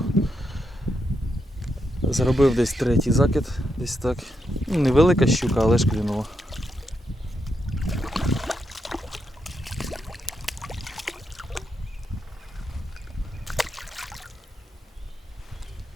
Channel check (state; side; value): normal; both; correlation 0.83